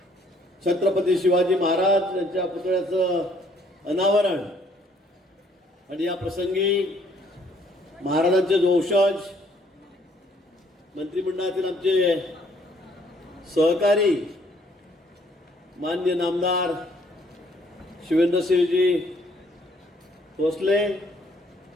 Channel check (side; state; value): both; normal; correlation 0.64